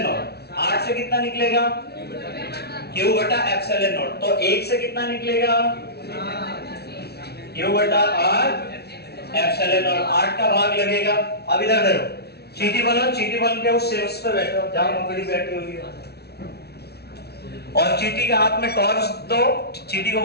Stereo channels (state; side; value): late; right; 0.47 ms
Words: नॉट। 8 से कितना निकलेगा? क्यू बटा एप्सिलॉन नॉट। तो 1 से कितना निकलेगा? क्यू बटा 8 एप्सिलॉन नॉट। 8 का भाग लगेगा। अब इधर देखो, चीटी बनो, चीटी बन के उस शीर्ष पे बैठो जहां मकड़ी बैठी हुई है, और चीटी के हाथ में टॉर्च दो। चीटी को